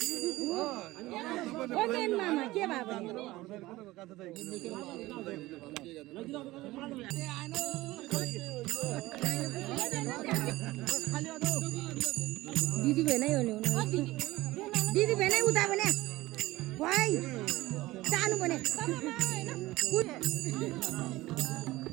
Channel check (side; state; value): left; quieter; 18.4 dB